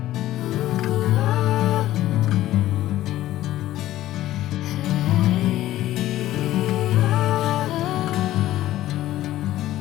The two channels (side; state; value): right; quieter; 14.5 dB